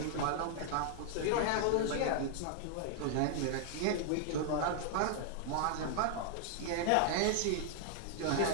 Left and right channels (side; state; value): both; different; correlation 0.00